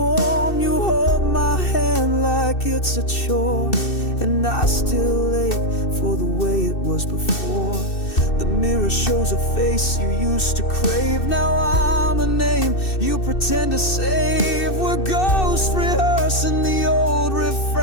You hold my hand like it's a chore, and I still ache for the way it was before. The mirror shows a face you used to crave. Now I'm a name you pretend to save. We're ghosts rehearsing the old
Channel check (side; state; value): right; late; 2.6 ms